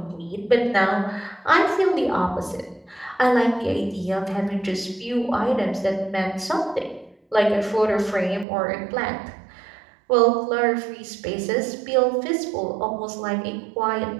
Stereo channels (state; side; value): drops out; left; at 8.5 s